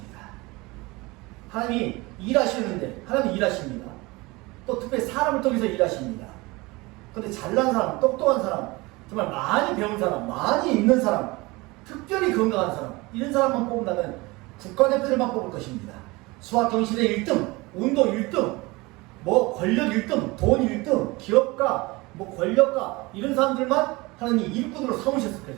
하나님이 일하시는데 하나님이 일하십니다. 또 특별히 사람을 통해서 일하십니다. 그런데 잘난 사람, 똑똑한 사람, 정말 많이 배운 사람, 많이 있는 사람, 특별히 건강한 사람, 이런 사람만 뽑는다면 국가대표들만 뽑을 것입니다. 수학 경시대 1등, 운동 1등, 뭐 권력 1등, 돈 1등, 기업가, 뭐 권력가, 이런 사람들만 하나님이 일꾼으로 삼으셨을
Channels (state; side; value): quieter; left; 23.2 dB